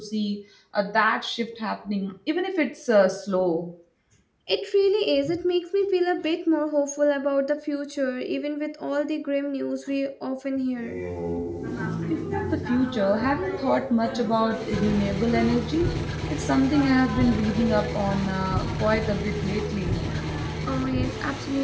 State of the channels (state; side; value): identical; both; correlation 1.00